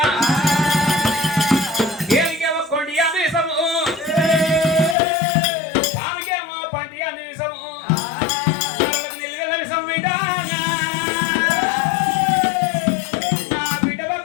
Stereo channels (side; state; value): right; drops out; at 5.0 s